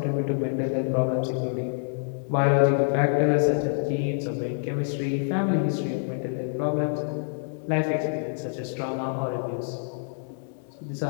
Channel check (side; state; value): right; silent; digital silence